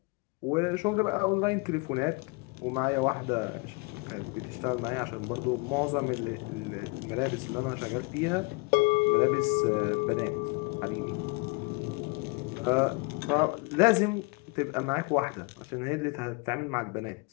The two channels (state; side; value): quieter; right; 29.5 dB